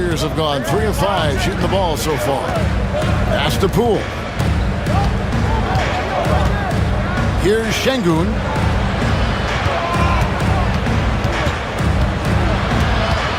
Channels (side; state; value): both; identical; correlation 1.00